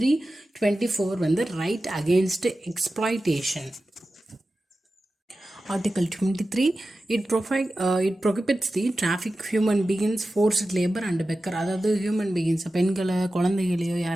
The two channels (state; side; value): normal; both; correlation 0.94